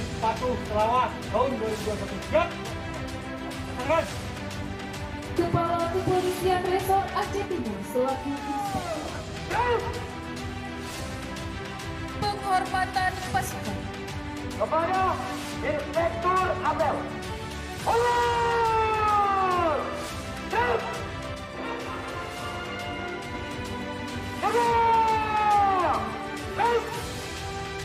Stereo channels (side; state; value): both; identical; correlation 1.00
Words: Patuh Selawat tahun 2021. Siap? Tangan. Kepala Kepolisian Resor Aceh Timur selaku inspektur. Penghormatan pasukan kepada Inspektur Abel. Allah! Siap! Siap! Siap!